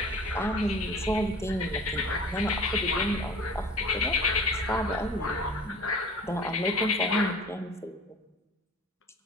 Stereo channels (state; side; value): normal; both; correlation 0.42